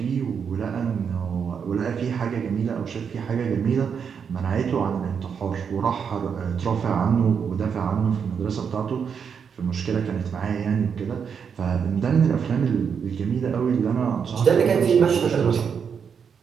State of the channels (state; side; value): quieter; left; 6.8 dB